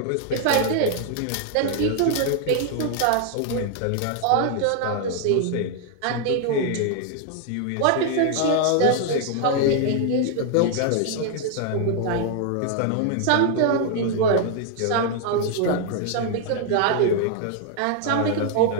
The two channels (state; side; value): different; both; correlation 0.00